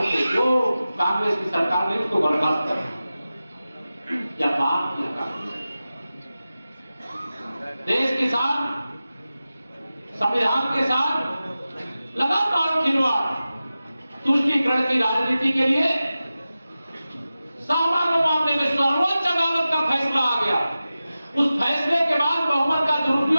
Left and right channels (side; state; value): both; inverted; correlation -0.95